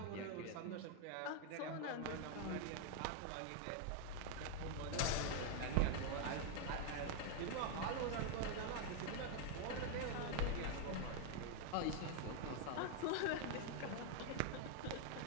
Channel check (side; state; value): both; different; correlation 0.00